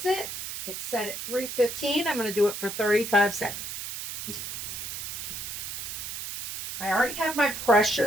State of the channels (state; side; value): noise; right; hiss, 6 dB below the sound